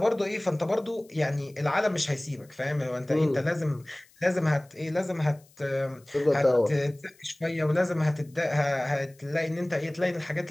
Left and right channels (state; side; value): noise; left; hiss, 29 dB below the sound